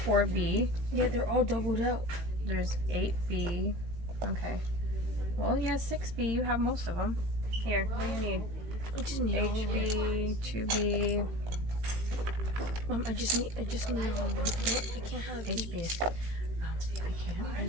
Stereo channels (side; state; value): left; late; 18 ms